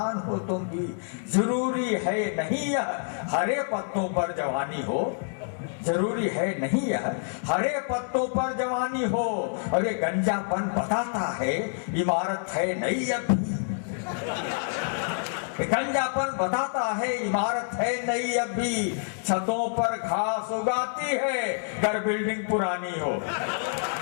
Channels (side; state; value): right; silent; 60 dB below the other